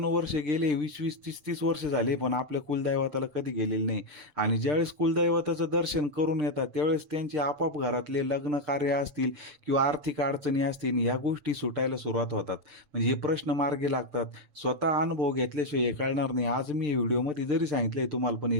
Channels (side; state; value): left; late; 6.7 ms